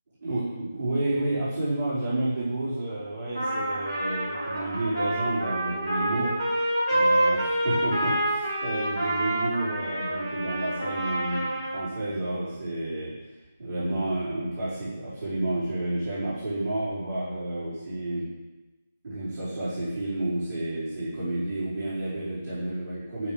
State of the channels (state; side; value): inverted; both; correlation -0.88